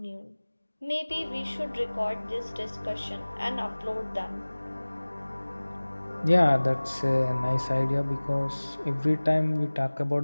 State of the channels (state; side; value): inverted; both; correlation -1.00